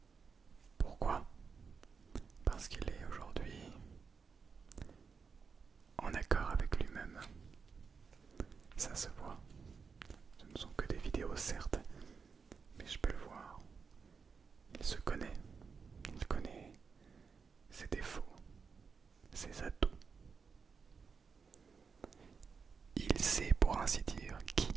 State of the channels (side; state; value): left; quieter; 5.6 dB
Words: Pourquoi ? Parce qu'il est aujourd'hui en accord avec lui-même. Ça se voit. Ce ne sont que des vidéos certes, mais je peux le voir. Il se connaît. Il connaît ses défauts, ses atouts. Il sait pour ainsi dire qui